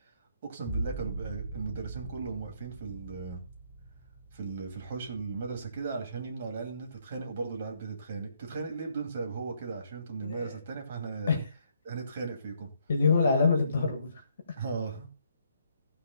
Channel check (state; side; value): inverted; both; correlation -0.70